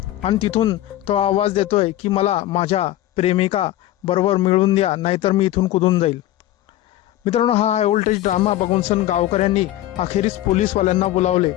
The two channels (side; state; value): right; quieter; 14.3 dB